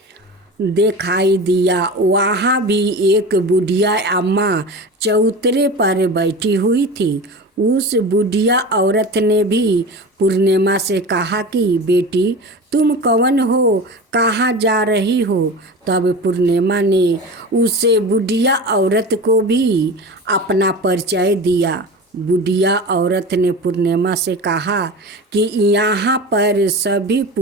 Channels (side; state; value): both; normal; correlation 0.31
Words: दिखाई दिया। वहाँ भी एक बुढ़िया अम्मा चौतरे पर बैठी हुई थी। उस बुढ़िया औरत ने भी पूर्णिमा से कहा कि बेटी, तुम कौन हो, कहाँ जा रही हो? तब पूर्णिमा ने उसे बुढ़िया औरत को भी अपना परिचय दिया। बुढ़िया औरत ने पूर्णिमा से कहा कि यहाँ पर सभी